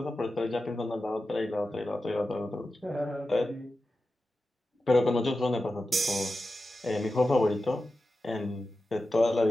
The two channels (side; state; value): both; normal; correlation 0.92